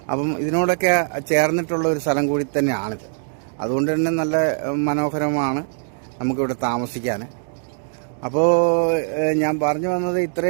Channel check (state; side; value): silent; left; 64 dB below the other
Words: അപ്പം ഇതിനോടൊക്കെ ചേർന്നിട്ടുള്ള ഒരു സ്ഥലം കൂടി തന്നെയാണിത്. അതുകൊണ്ട് തന്നെ നല്ല മനോഹരമാണ് നമുക്കിവിടെ താമസിക്കാൻ. അപ്പോൾ ഞാൻ പറഞ്ഞു വന്നത്